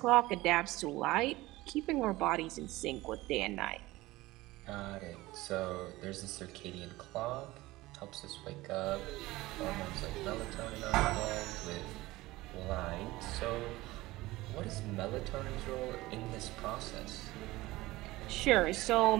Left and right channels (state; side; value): quieter; left; 18.9 dB